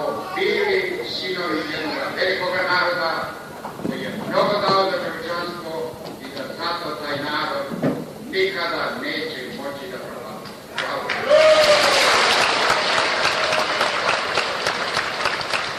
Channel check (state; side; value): identical; both; correlation 1.00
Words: bili sinovi jednog velikog naroda koji je mnogo dao za čovječanstvo i da zato taj narod nikada neće moći da propada. Hvala.